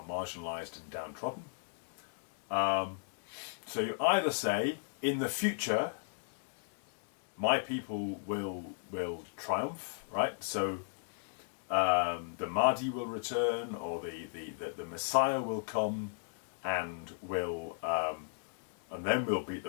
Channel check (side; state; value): right; silent; digital silence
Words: marginalised and downtrodden. So you either say, in the future, my people will triumph, right? So the Mahdi will return, or the Messiah will come and will and then we'll beat